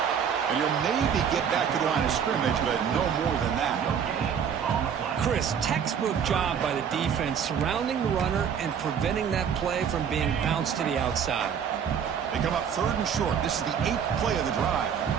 And he'll maybe get back to the line of scrimmage, but no more than that. Chris, textbook job by the defense surrounding the runner and preventing that play from being bounced to the outside. They come up 3rd and short. This is the 8th play of the drive.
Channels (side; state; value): left; quieter; 7.7 dB